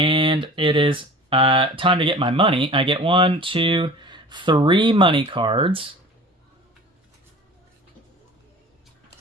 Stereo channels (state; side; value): normal; both; correlation 0.41